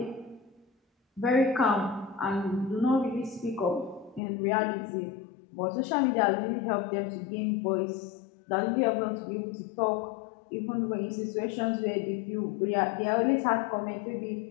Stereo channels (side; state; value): right; drops out; at 4.2 s